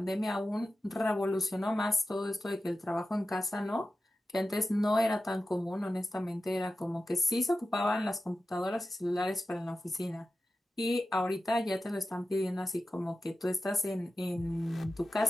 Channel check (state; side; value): normal; both; correlation 0.92